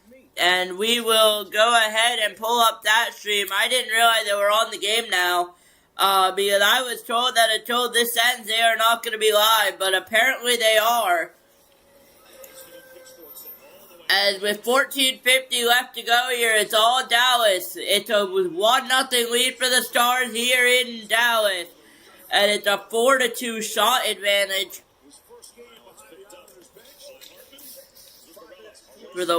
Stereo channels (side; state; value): both; identical; correlation 1.00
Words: And we will go ahead and pull up that stream. I didn't realize they were on the game now, because I was told that until this ends, they are not going to be live, but apparently they are. And with 14:50 left to go here, it's all Dallas. It's a 1-0 lead for the Stars here in Dallas. And it's a 4-2 shot advantage for the